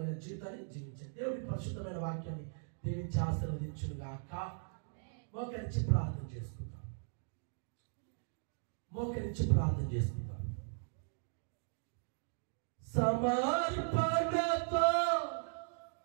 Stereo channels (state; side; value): silent; left; digital silence